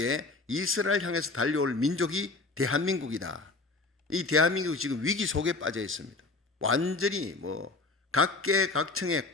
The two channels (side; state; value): right; quieter; 3.5 dB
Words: 이스라엘 향해서 달려올 민족이 대한민국이다. 이 대한민국이 지금 위기 속에 빠져 있습니다. 완전히 각계각층의